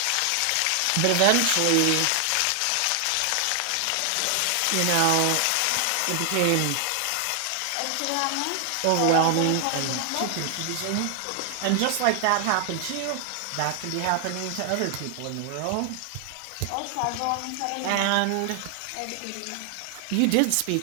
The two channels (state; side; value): different; both; correlation 0.00